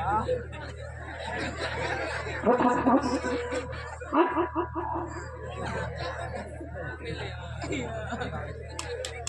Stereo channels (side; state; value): both; identical; correlation 1.00